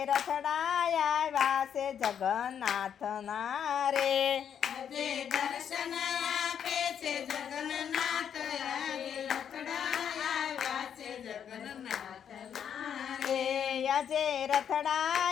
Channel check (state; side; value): quieter; right; 8.4 dB